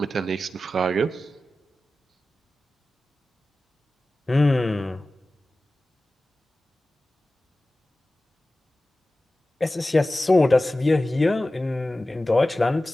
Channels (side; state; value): both; normal; correlation 0.96